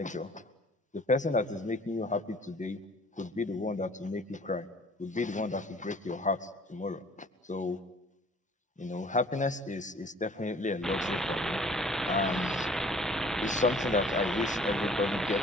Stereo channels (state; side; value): normal; both; correlation 0.53